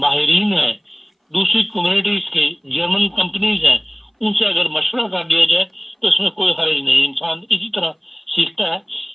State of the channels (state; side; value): identical; both; correlation 1.00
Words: ہیں، دوسری کمیونٹیز کے جرمن کمپنیز ہیں، ان سے اگر مشورہ کر دیا جائے تو اس میں کوئی حرج نہیں، انسان اسی طرح سیکھتا ہے۔